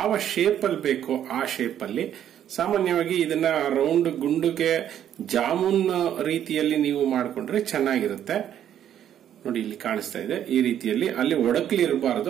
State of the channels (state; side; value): quieter; left; 10.3 dB